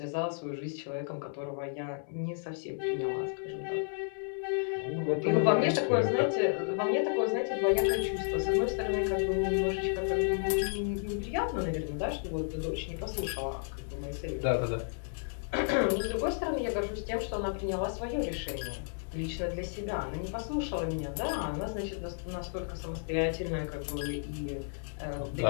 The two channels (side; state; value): right; silent; 56 dB below the other